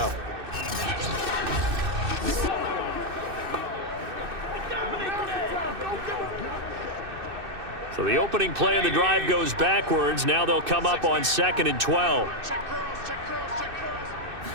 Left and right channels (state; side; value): late; left; 2.6 ms